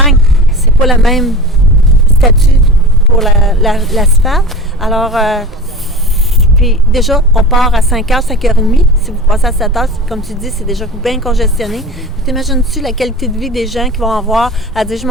c'est pas le même statut pour l'asphalte. Alors, puis déjà, on part à 5h, 5h30. Si vous passez à 7h, comme tu dis, c'est déjà bien congestionné. T'imagines-tu la qualité de vie des gens qui vont avoir à dire « je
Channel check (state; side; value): normal; both; correlation 0.33